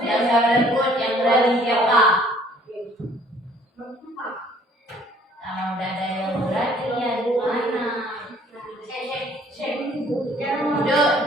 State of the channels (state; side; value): normal; both; correlation 0.58